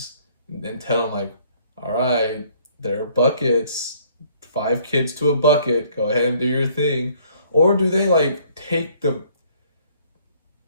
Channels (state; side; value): inverted; both; correlation -0.61